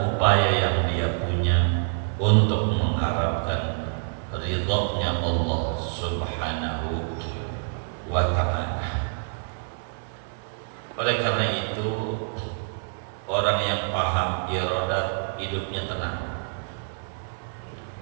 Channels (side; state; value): left; silent; 61 dB below the other